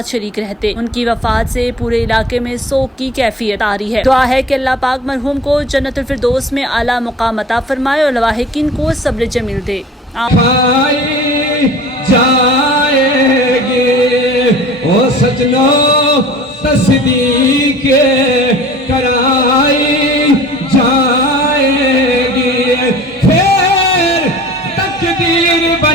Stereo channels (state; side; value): normal; both; correlation 0.44